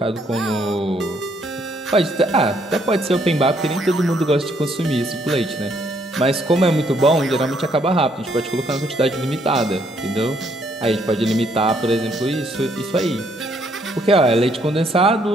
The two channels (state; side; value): normal; both; correlation 0.69